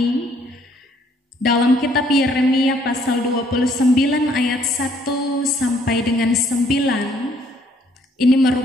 dalam kitab Yeremia pasal 29 ayat 1 sampai dengan 9. Ini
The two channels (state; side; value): normal; both; correlation 0.64